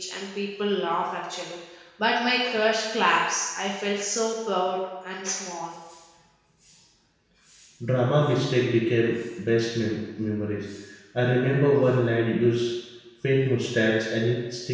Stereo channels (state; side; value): identical; both; correlation 1.00